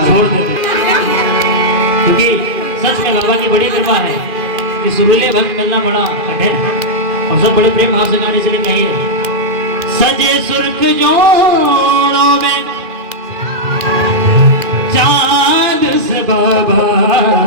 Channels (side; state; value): left; late; 2.4 ms